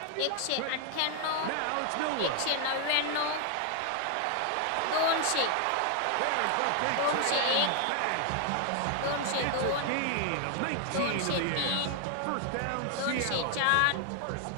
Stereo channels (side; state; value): both; different; correlation 0.00